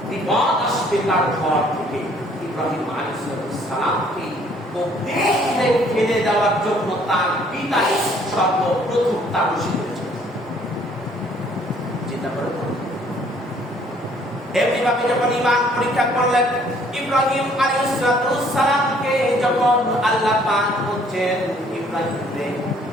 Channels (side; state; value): both; normal; correlation 0.61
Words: বিপদ আসবে তার ঘর থেকে। ইব্রাহিম আলাইহিস সালামকে অগ্নিতে ফেলে দেওয়ার জন্য তার পিতা সর্বপ্রথম তাবুশি করেছেন। চিন্তা করে এমনিভাবে যখন ঈমান পরীক্ষা করলেন ইব্রাহিম আলাইহিস সালামকে, যখন আল্লাহ পাক বলছেন ইব্রাহিমকে